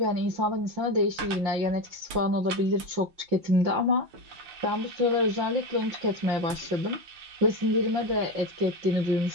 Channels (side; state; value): left; late; 5.8 ms